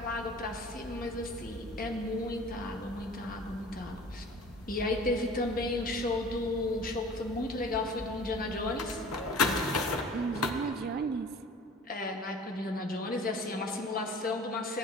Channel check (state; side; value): normal; both; correlation 0.44